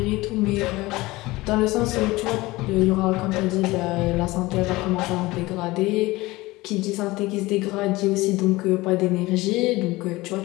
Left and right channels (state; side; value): quieter; right; 20.3 dB